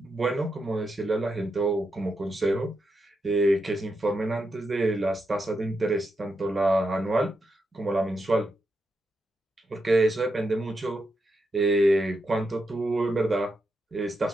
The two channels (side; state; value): both; normal; correlation 0.85